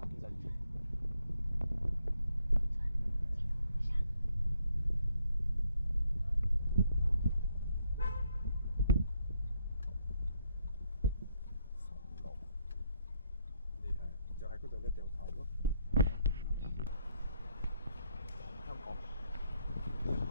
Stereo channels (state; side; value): inverted; both; correlation -0.74